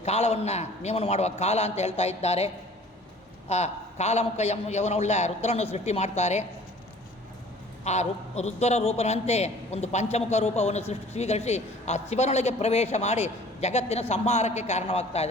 ಕಾಲವನ್ನು ನಿಯಮನ ಮಾಡುವ ಕಾಲ ಅಂತ ಹೇಳ್ತಾ ಇದ್ದಾರೆ. ಆ ಕಾಲಮುಖ ಯವನವುಳ್ಳ ರುದ್ರನ್ನು ಸೃಷ್ಟಿ ಮಾಡ್ತಾರೆ. ಆ ರುದ್ರ ರೂಪನಂತೆ ಒಂದು ಪಂಚಮುಖ ರೂಪವನ್ನು ಸ್ವೀಕರಿಸಿ ಆ ಶಿವನೊಳಗೆ ಪ್ರವೇಶ ಮಾಡಿ ಜಗತ್ತಿನ ಸಂಹಾರಕ್ಕೆ ಕಾರಣವಾಗ್ತಾ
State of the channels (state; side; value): normal; both; correlation 0.50